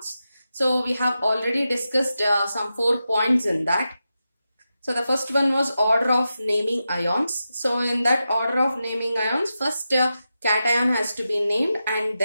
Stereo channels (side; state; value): both; inverted; correlation -0.90